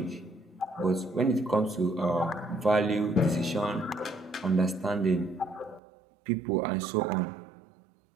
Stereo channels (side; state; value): left; drops out; at 5.8 s